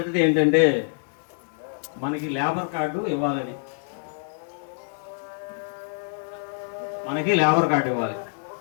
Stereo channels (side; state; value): right; silent; digital silence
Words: ఏంటంటే మనకి లేబర్ కార్డు ఇవ్వాలని. మనకి లేబర్ కార్డు ఇవ్వాలి.